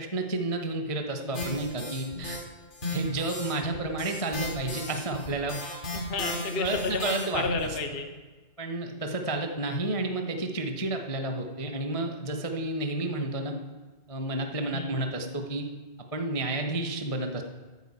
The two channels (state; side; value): late; right; 1.6 ms